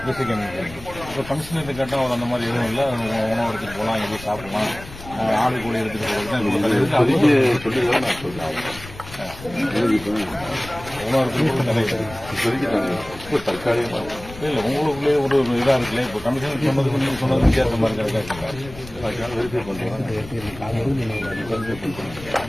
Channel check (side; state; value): left; noise; rumble, 16 dB below the sound